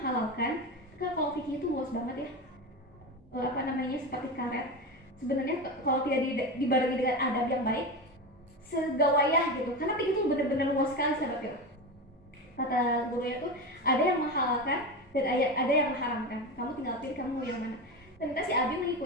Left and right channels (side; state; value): both; normal; correlation 0.21